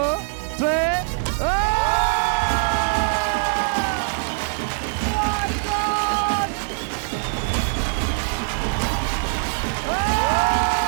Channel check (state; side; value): silent; left; digital silence